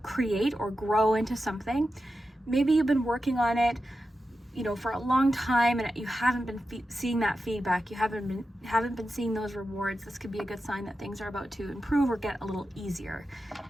create or grow into something. Maybe you've been working on it, you know, for a long time, and you haven't been seeing that feedback. You haven't been seeing those rewards. This could be a good sign that things are about to improve or get a little easier,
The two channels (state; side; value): normal; both; correlation 0.91